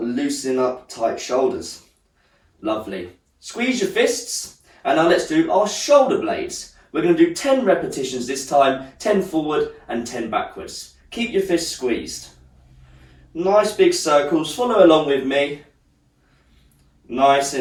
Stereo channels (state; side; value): identical; both; correlation 1.00